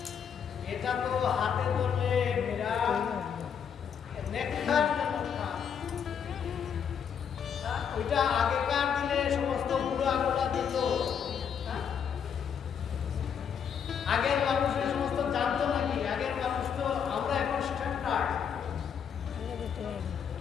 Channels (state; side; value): quieter; right; 7.6 dB